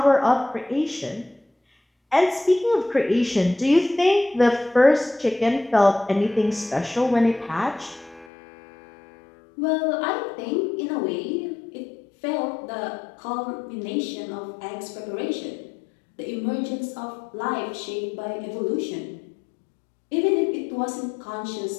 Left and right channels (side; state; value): right; drops out; at 8.3 s